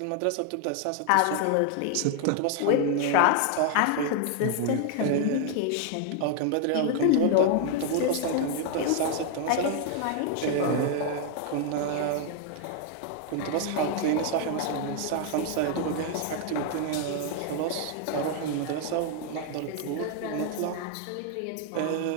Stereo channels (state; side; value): different; both; correlation 0.00